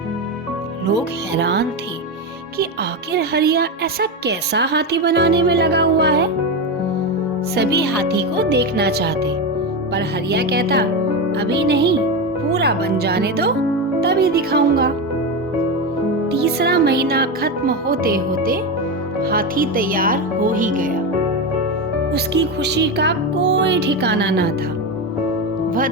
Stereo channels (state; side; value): normal; both; correlation 0.16